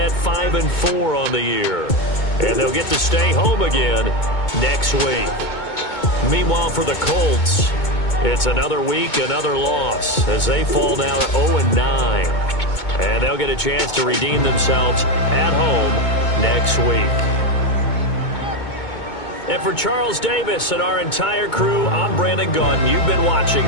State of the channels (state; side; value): late; right; 2.2 ms